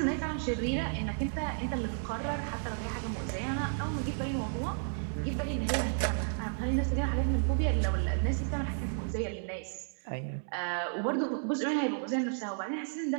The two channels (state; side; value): silent; left; digital silence